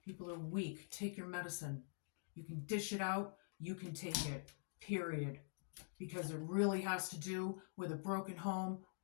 People are weak. Take your medicine. You can dish it out. You can take it. Period. Because it really has to do with a broken home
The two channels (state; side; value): silent; right; digital silence